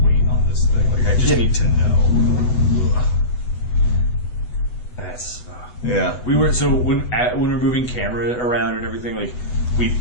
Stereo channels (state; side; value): late; right; 8.0 ms